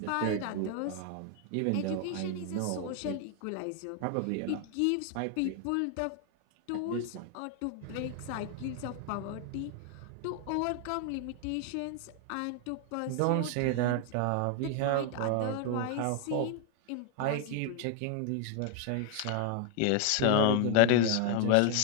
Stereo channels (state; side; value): different; both; correlation 0.00